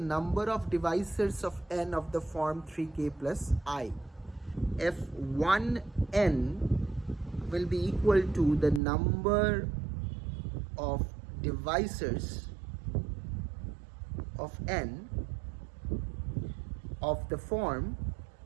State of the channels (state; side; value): drops out; left; at 8.8 s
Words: of divisors of n of the form 3k plus I. F1n will be equal to the number of divisors of n of the form